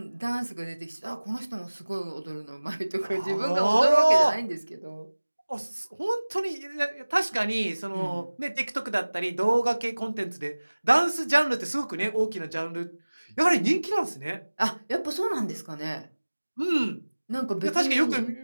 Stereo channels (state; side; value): inverted; both; correlation -1.00